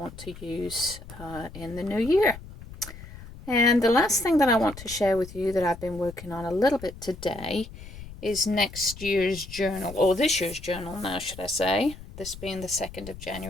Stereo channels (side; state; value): left; noise; rumble, 15 dB below the sound